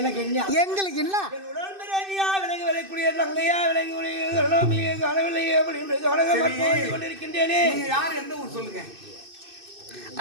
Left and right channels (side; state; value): left; late; 2.6 ms